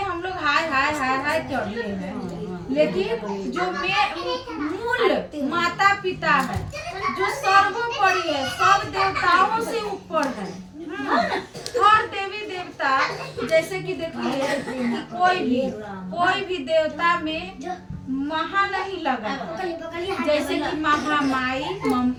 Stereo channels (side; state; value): both; identical; correlation 1.00